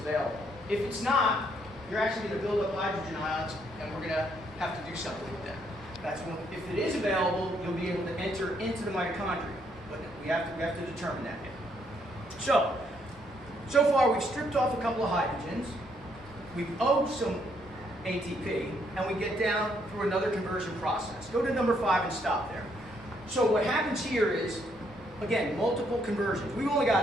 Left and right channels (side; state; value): both; normal; correlation 0.72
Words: If it's not, you're actually going to build up hydrogen ions, and we're going to have to do something with them. That's when, if it is available, you'll be able to enter into the mitochondria. But we have to determine that. So far we've stripped off a couple of hydrogens. We've owed some ATP, and we get down through another conversion process. Go to number 5 and stop there. So what happens here is, again, multiple conversions. We've only